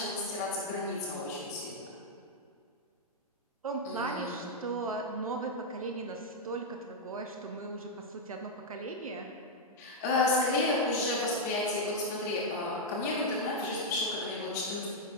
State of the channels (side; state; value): both; normal; correlation -0.02